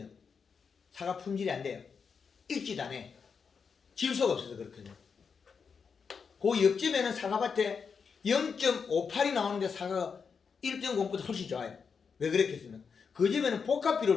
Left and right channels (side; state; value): right; quieter; 5.9 dB